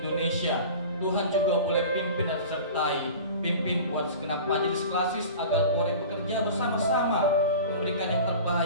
Indonesia. Tuhan juga boleh pimpin dan sertai, pimpin buat segenap majelis klasis agar boleh bekerja bersama-sama memberikan yang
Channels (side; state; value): both; inverted; correlation -0.37